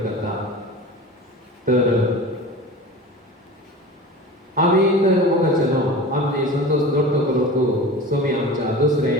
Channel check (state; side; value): normal; both; correlation 0.34